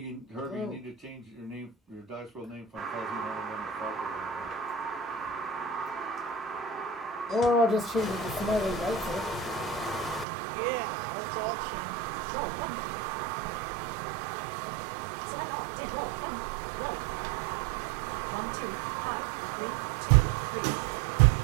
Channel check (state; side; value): drops out; left; at 10.2 s